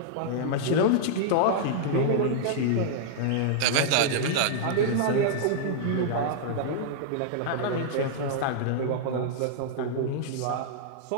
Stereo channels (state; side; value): different; both; correlation -0.02